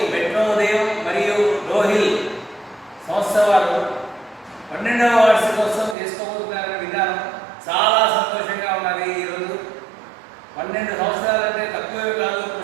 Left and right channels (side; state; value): left; drops out; at 6.0 s